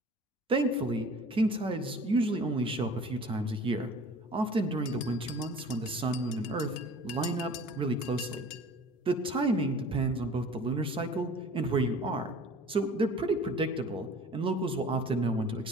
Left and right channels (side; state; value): both; normal; correlation 0.45